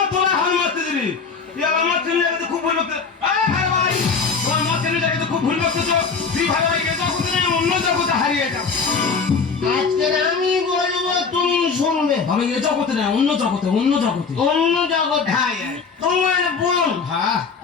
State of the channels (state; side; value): quieter; right; 5.2 dB